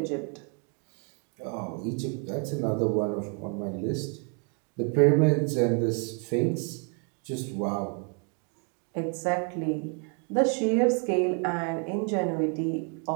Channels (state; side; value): quieter; left; 39.4 dB